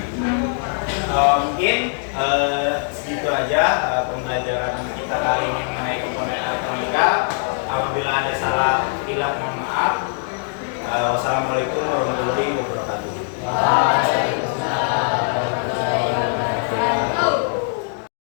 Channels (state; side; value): silent; right; 57 dB below the other